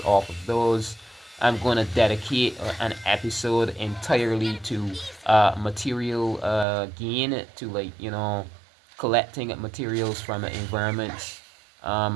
off of those. I'm going to dedicate an episode entirely to material gain, to collecting materials from environments.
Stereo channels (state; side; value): drops out; left; at 6.7 s